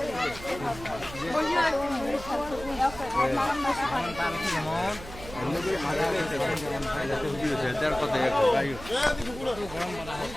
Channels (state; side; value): noise; right; hum, 14 dB below the sound